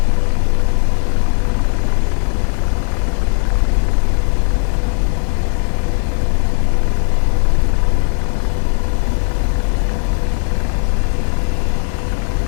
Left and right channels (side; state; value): right; silent; 55 dB below the other